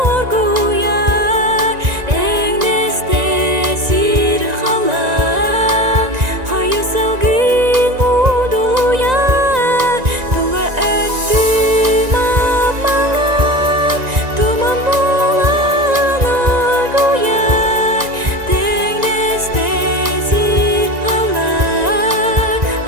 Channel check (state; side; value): late; left; 1.9 ms